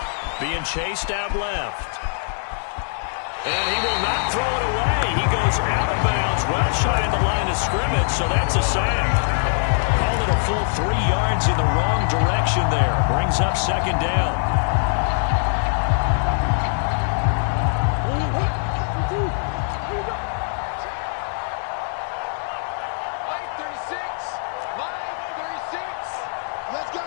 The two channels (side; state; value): right; silent; digital silence